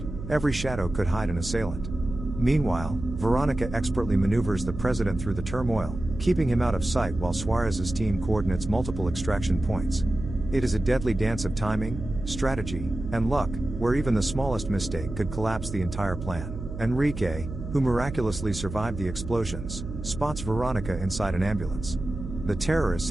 every shadow could hide an assailant. Meanwhile, Veronica expertly maneuvers the president through the turmoil, keeping him out of sight while Suarez's team coordinates multiple extraction points. It is a deadly dance of timing, strategy, and luck, where even the smallest mistake could collapse the entire plan. Enrique, who miraculously survived the explosions, spots Veronica inside an ambulance. The terrorists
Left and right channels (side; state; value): right; noise; hum, 9 dB below the sound